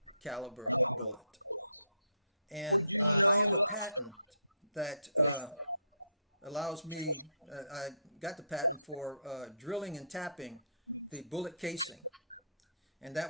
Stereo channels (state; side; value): inverted; both; correlation -0.69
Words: Would you know?